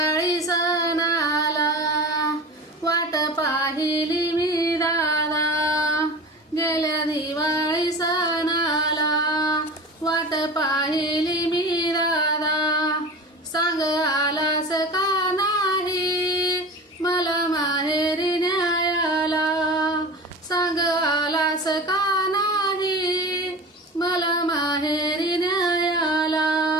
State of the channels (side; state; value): both; normal; correlation 0.34